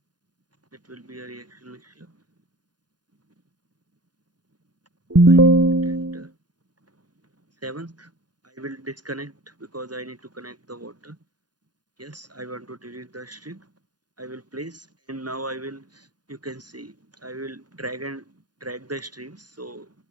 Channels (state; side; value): late; left; 0.69 ms